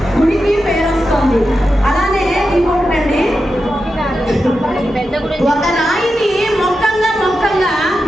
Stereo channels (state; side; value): normal; both; correlation 0.89